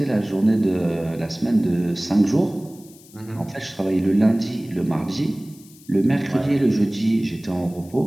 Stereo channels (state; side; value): noise; left; hiss, 24 dB below the sound